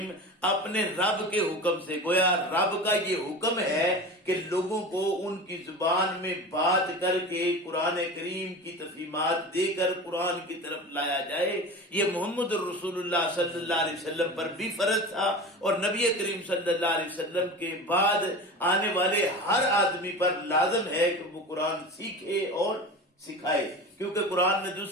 اپنے رب کے حکم سے۔ گویا رب کا یہ حکم ہے کہ لوگوں کو ان کی زبان میں بات کر کے قرآن کریم کی تفہیمات دے کر قرآن کی طرف لایا جائے۔ یہ محمد الرسول اللہ صلی اللہ علیہ وسلم پر بھی فرض تھا، اور نبی کریم صلی اللہ علیہ وسلم کے بعد آنے والے ہر آدمی پر لازم ہے کہ وہ قرآن سیکھے اور سکھائے، کیونکہ قرآن نے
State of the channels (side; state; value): both; normal; correlation 0.32